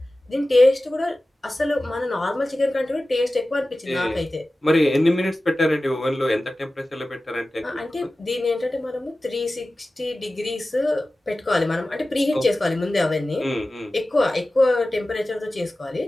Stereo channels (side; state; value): both; normal; correlation 0.96